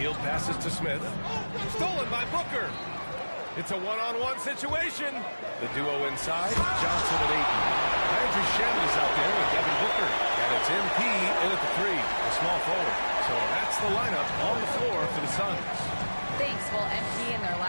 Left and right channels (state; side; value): inverted; both; correlation -1.00